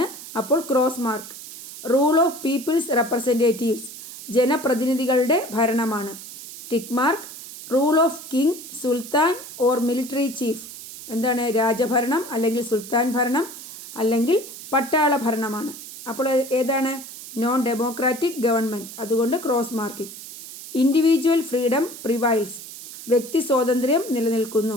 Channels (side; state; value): right; noise; hiss, 13 dB below the sound